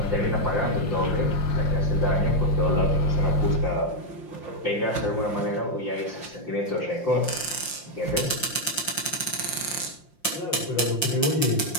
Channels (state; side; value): late; right; 5.7 ms